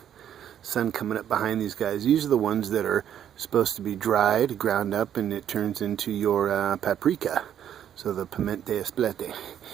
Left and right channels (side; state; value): left; quieter; 9.9 dB